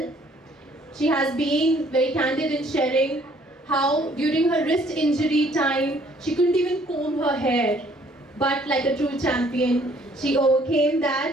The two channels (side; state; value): both; normal; correlation 0.61